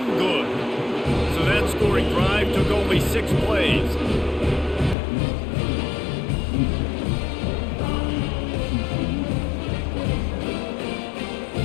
good. So that scoring drive took only 6 plays.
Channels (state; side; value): drops out; right; at 5.0 s